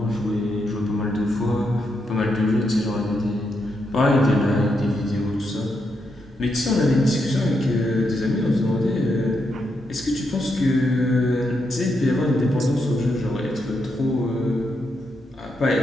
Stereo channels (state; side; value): normal; both; correlation 0.82